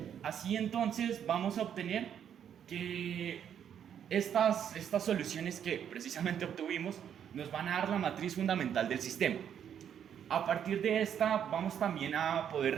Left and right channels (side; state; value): left; quieter; 8.9 dB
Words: Así entonces vamos a obtener que estas soluciones que precisamente obtuvimos nos van a dar la matriz fundamental del sistema. A partir de esta vamos también a poder